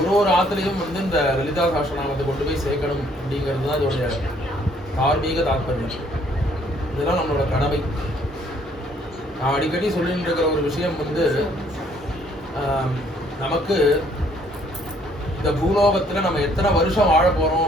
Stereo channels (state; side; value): normal; both; correlation 0.64